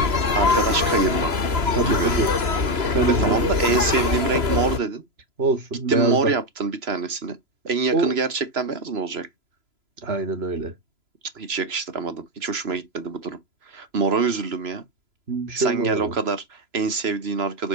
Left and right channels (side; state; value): left; late; 3.0 ms